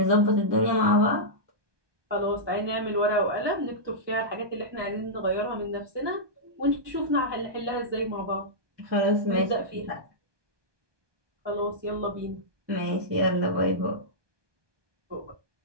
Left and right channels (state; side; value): late; left; 1.2 ms